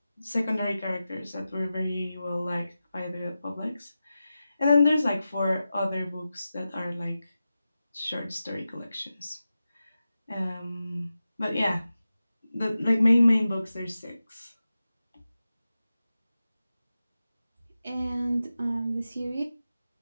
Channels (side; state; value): both; inverted; correlation -0.93